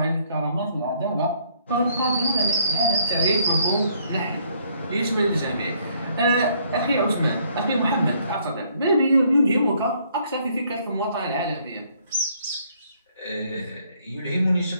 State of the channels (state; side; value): inverted; both; correlation -0.66